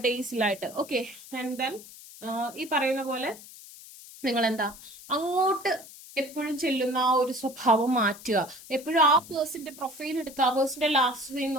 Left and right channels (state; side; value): noise; left; hiss, 17 dB below the sound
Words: ഡേയ്സിലായിട്ട്. ഓക്കെ, ആൻഡ് ദെൻ ഈ പറയുന്ന പോലെ നിങ്ങൾ അങ്ങോട്ട് എപ്പോഴും ചെല്ലുന്ന ആ ഒരു സ്വഭാവം മാറ്റുക. എപ്പോഴും ആ പേഴ്സന്റെ പ്രൊഫൈൽ എടുത്ത് ആ പേഴ്സന്റെ ലാസ്റ്റ് സീൻ